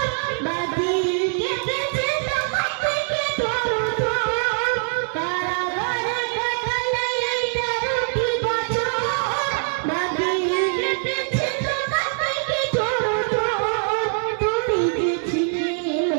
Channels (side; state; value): left; silent; digital silence